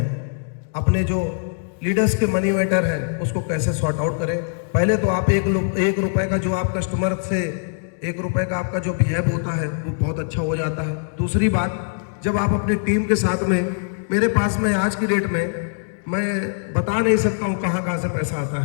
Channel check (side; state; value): right; silent; digital silence